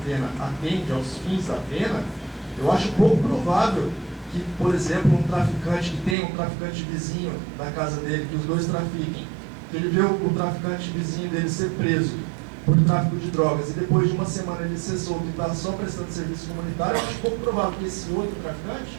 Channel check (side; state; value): left; drops out; at 6.2 s